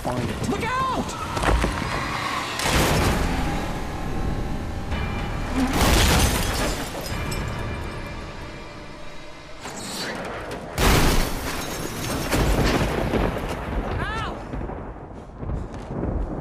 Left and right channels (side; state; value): both; identical; correlation 1.00